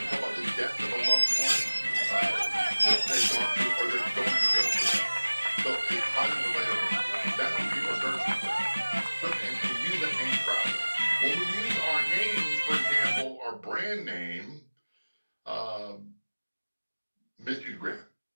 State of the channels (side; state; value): both; inverted; correlation -1.00